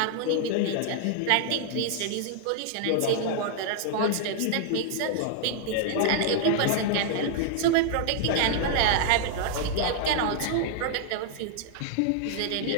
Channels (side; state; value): both; different; correlation -0.01